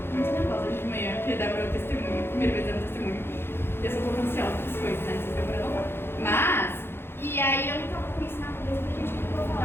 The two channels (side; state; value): right; late; 0.11 ms